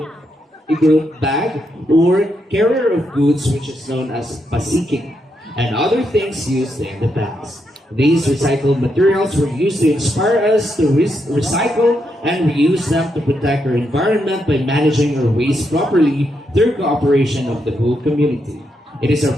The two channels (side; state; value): both; normal; correlation 0.81